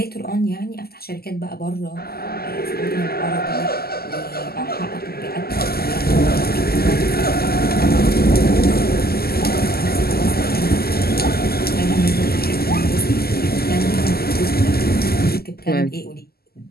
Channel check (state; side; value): late; right; 0.45 ms